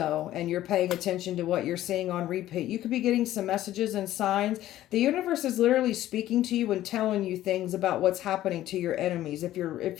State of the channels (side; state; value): right; quieter; 13.8 dB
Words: and you're paying attention to what you're seeing on repeat. You could be getting some messages and signs. The universe is literally speaking to you and telling you things about what's happening to your enemies. If